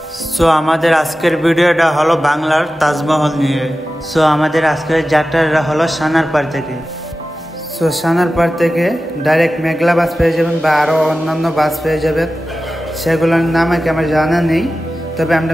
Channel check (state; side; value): normal; both; correlation 0.94